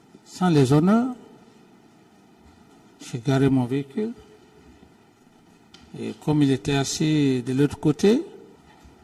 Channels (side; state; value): both; identical; correlation 1.00